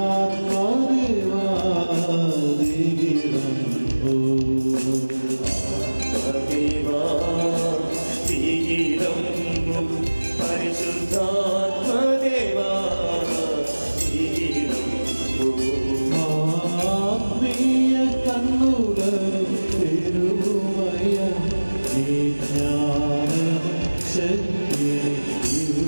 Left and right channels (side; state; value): both; inverted; correlation -1.00